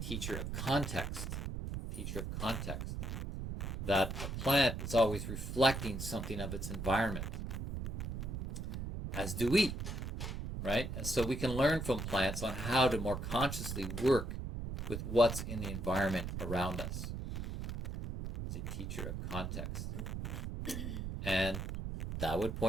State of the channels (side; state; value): right; noise; rumble, 4 dB below the sound